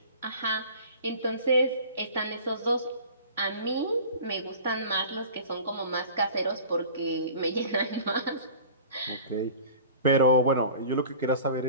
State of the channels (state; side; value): inverted; both; correlation -0.42